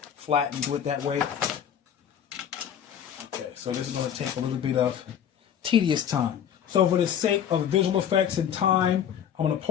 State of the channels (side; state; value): right; quieter; 8.9 dB